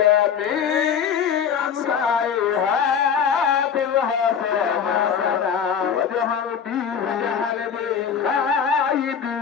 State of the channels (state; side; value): quieter; right; 7.3 dB